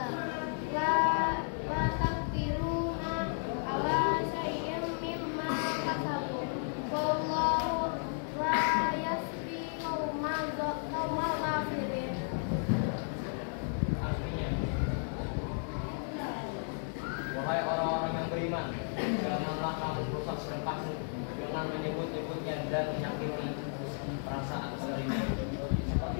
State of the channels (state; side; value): silent; right; 55 dB below the other